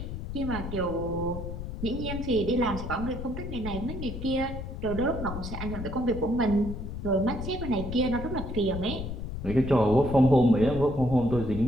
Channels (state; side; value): noise; left; rumble, 7 dB below the sound